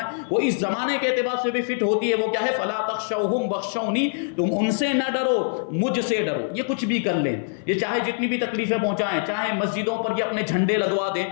وہ اس زمانے کے اعتبار سے بھی فٹ ہوتی ہے. وہ کیا ہے؟ فلا تخشوہم واخشونی, تم ان سے نہ ڈرو, مجھ سے ڈرو. یہ کچھ بھی کر لیں, یہ چاہے جتنی بھی تکلیفیں پہنچائیں, چاہے مسجدوں پر یہ اپنے جھنڈے لگوا دیں,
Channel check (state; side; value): silent; right; 61 dB below the other